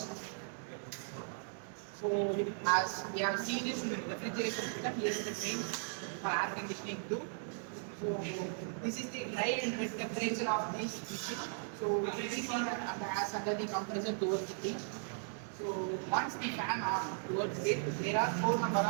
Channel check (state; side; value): silent; left; digital silence